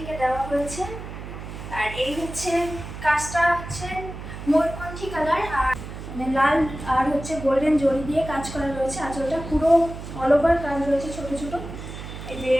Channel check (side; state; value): right; noise; hum, 10 dB below the sound